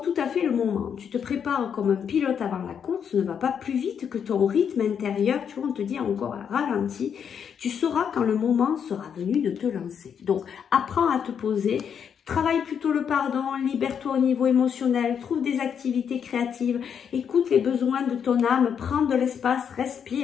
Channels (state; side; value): quieter; right; 7.6 dB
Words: tout à fait le moment. Tu te prépares comme un pilote avant la course. Ne va pas plus vite que ton rythme intérieur. Tu vois, on te dit encore à ralenti. Tu sauras quand le moment sera venu de te lancer. Donc, apprends à te poser. Travaille plutôt le pardon, libère-toi au niveau émotionnel, trouve des activités créatives, écoute les besoins de ton âme, prends de l'espace,